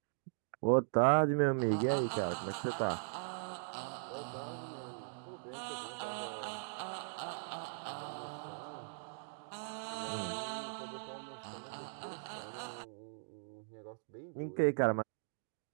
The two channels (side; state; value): left; silent; digital silence